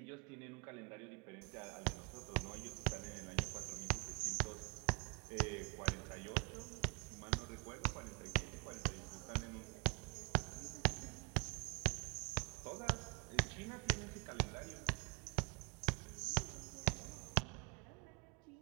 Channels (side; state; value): left; quieter; 32.2 dB